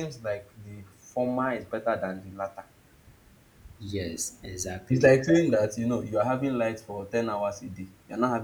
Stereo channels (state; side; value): identical; both; correlation 1.00